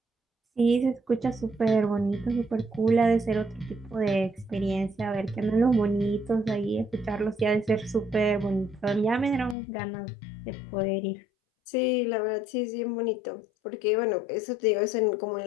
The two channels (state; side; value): drops out; right; at 9.6 s